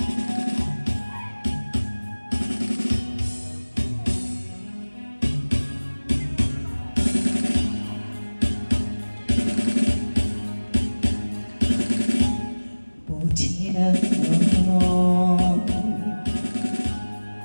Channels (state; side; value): inverted; both; correlation -1.00